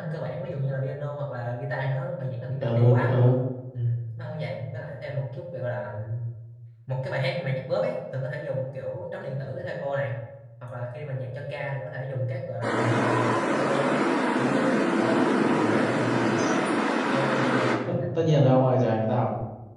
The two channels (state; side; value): identical; both; correlation 1.00